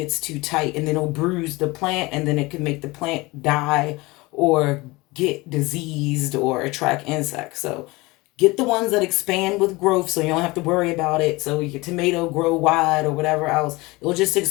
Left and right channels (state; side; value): quieter; right; 22.8 dB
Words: too tight, and then it'll bruise the plant, and then it can make the plant die or get diseased or attract insects. So get the ones that expand with growth, so you don't have to worry about it. So your tomato grow wide or whatever else, it'll just